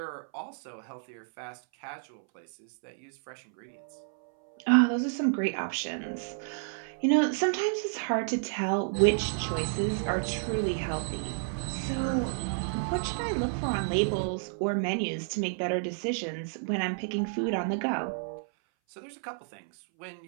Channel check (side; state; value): left; silent; 57 dB below the other